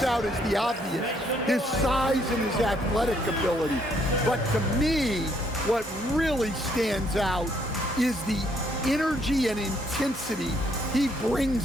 out is the obvious, his size and his athletic ability. But to me, what really stands out is the energy and intensity he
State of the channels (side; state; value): both; normal; correlation 0.69